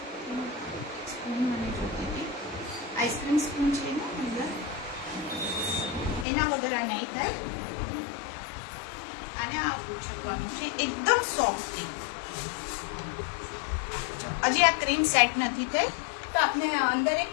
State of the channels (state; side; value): drops out; right; at 6.2 s